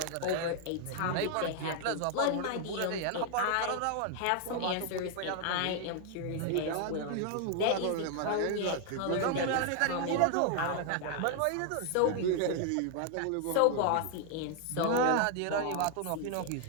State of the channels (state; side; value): different; both; correlation 0.00